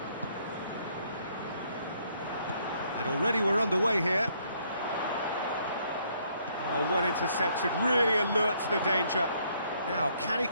And already we're underway here. Oh, well intercepted, really alert to the danger. Now, can he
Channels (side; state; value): both; inverted; correlation -0.68